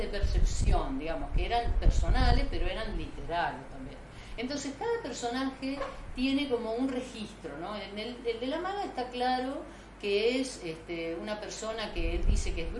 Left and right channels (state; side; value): identical; both; correlation 1.00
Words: de percepción, digamos, que eran personales, pero eran literarios también. Entonces, cada personaje tiene como un registro, ¿no? El de la maga está claro que es una persona que él dice que es